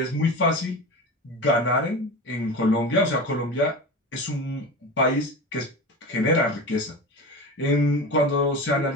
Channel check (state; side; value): normal; both; correlation 0.28